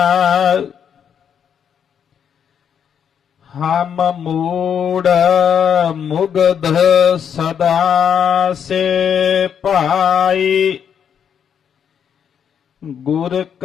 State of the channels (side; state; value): right; quieter; 8.0 dB